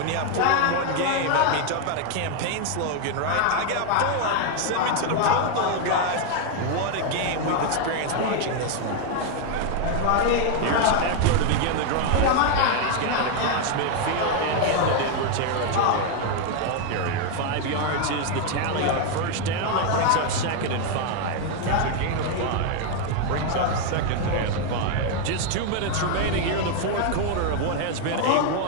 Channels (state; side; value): different; both; correlation 0.01